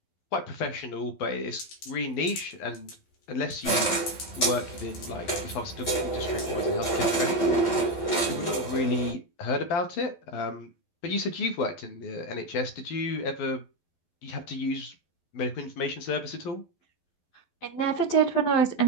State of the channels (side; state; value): right; late; 12 ms